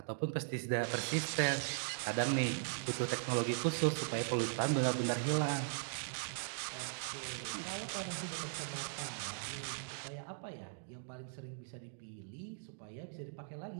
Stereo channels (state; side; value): silent; left; digital silence